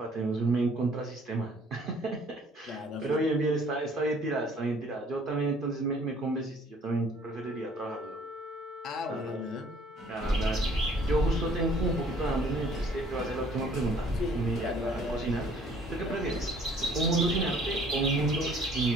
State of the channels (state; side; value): normal; both; correlation 0.57